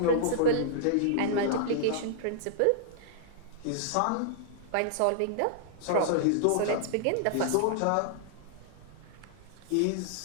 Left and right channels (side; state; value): both; different; correlation -0.01